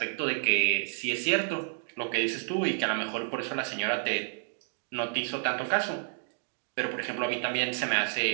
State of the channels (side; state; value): left; silent; digital silence